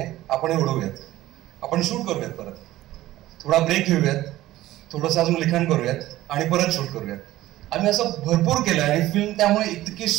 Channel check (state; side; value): quieter; left; 15.7 dB